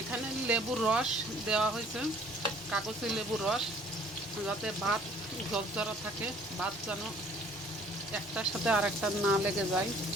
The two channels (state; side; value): normal; both; correlation 0.56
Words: লেবুর রস দেওয়া হয়েছে, কাগজে লেবুর রস, যাতে ভাত ঝরঝরা থাকে, ভাত যেন একটার সাথে আর একটা না লেগে যায়।